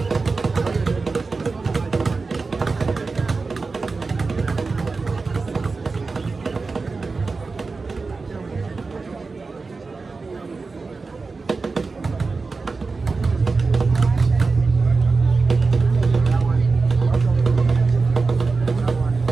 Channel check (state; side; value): quieter; left; 4.1 dB